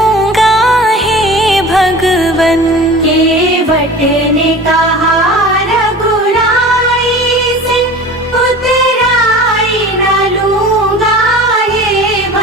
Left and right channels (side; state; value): both; normal; correlation 0.38